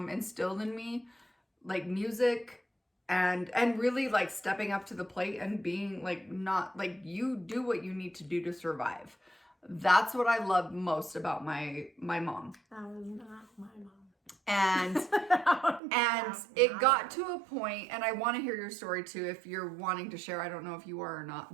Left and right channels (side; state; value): left; drops out; at 15.8 s